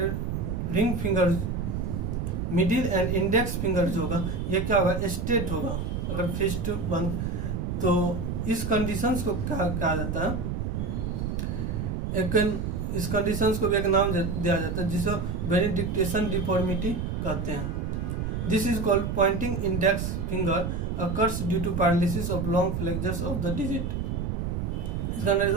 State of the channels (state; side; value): noise; right; rumble, 2 dB below the sound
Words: ring finger, middle and index finger जो होगा ये क्या होगा, स्ट्रेट होगा अगर फिस्ट बंद। तो इस कंडीशंस को क्या कहा जाता है, इस कंडीशंस को भी एक नाम दिया जाता है जिसे बेनिडिक्टेशन डिफॉर्मिटी कहते हैं। This is called pointing index finger occurs due to paralysis of long flexors of the digit. इस